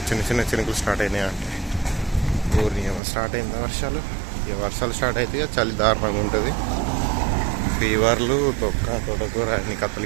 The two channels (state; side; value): drops out; left; at 3.0 s